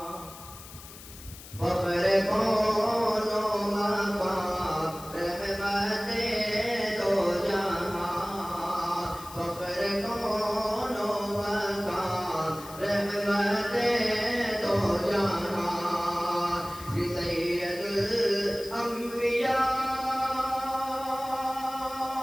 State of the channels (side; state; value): left; noise; hiss, 16 dB below the sound